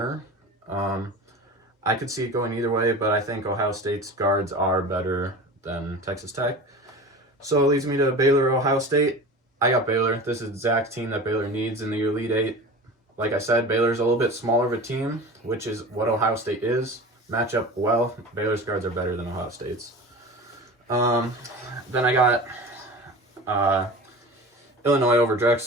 I could see it going either way, but I think Ohio State's guards are better than Texas Tech. So it leads me to Baylor, Ohio State. I got Baylor. This is the exact team that Baylor needs in the Elite Eight. like I said, Baylor's a little bit smaller of a team, which is what Ohio State is. Match up well. Baylor's guards are better than Ohio State's. Then I got Illinois over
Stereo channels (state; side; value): normal; both; correlation 0.34